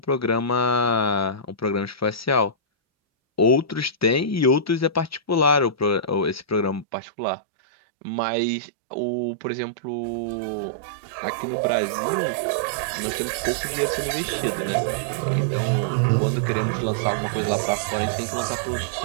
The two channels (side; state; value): left; drops out; at 6.9 s